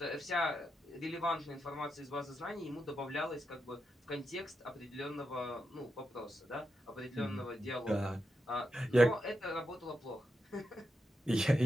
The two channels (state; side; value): normal; both; correlation 0.86